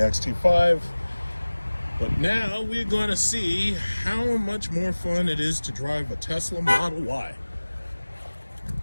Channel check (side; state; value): both; inverted; correlation -1.00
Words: but now we're going to see how much more fun it is to drive a Tesla Model Y.